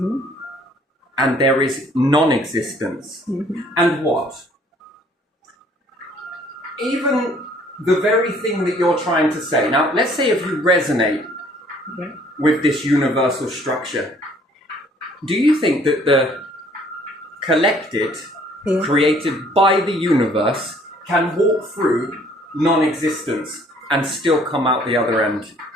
there is non-existence. And what? Even the very thing that you're trying to say. Now, let's say if you resonate with this universal structure, do you think that the collected, created by the universe, can walk through non-existence and still come out the other end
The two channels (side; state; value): both; normal; correlation 0.59